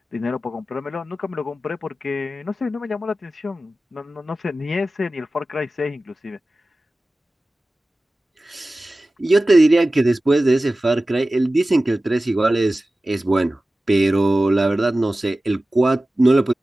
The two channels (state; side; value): normal; both; correlation 0.96